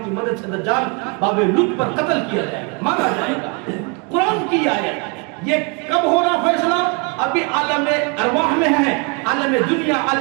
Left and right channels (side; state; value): left; quieter; 32.9 dB